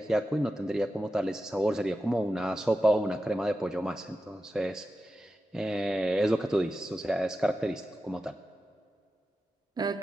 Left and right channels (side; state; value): both; normal; correlation 0.92